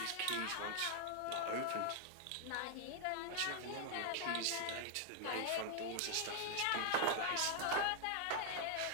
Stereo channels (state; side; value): different; both; correlation 0.00